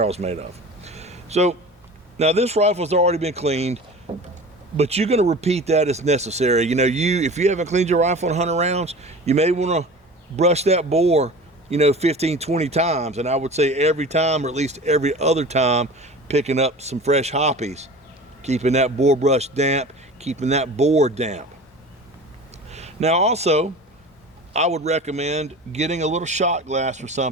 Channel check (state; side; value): normal; both; correlation 0.37